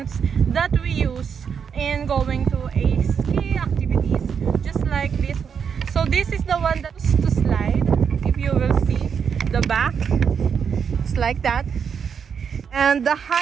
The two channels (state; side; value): quieter; left; 6.9 dB